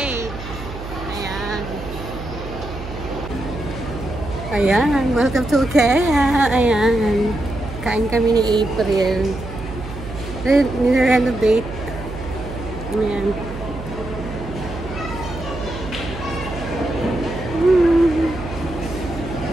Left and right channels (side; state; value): right; noise; hum, 11 dB below the sound